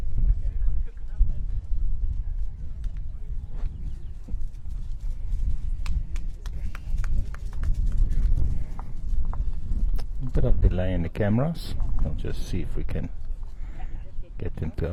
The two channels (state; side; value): identical; both; correlation 1.00